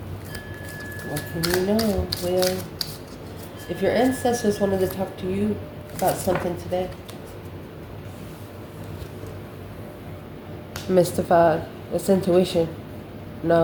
What can you know, Leo? If your ancestors wanted to talk to you about something today. Mystified. It's intuition.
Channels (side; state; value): both; identical; correlation 1.00